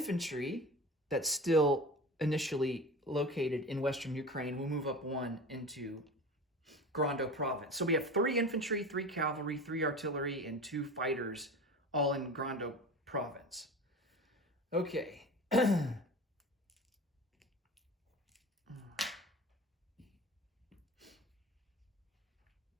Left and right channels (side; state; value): both; normal; correlation 0.33